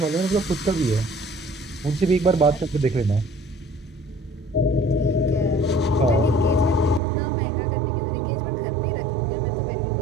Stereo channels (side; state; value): left; drops out; at 7.0 s